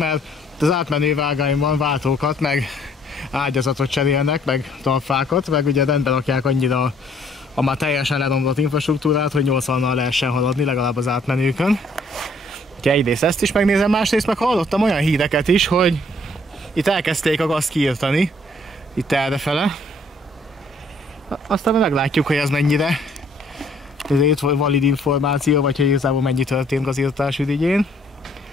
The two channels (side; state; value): both; normal; correlation 0.62